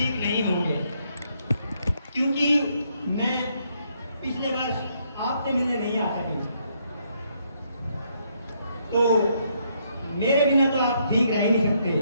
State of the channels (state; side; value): inverted; both; correlation -0.73